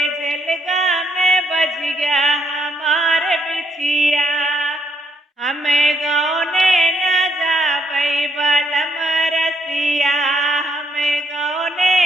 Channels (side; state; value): both; normal; correlation 0.73